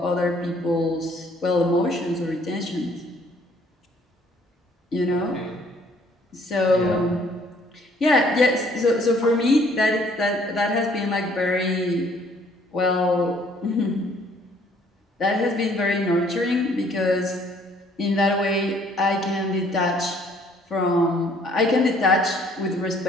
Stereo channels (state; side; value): normal; both; correlation 0.61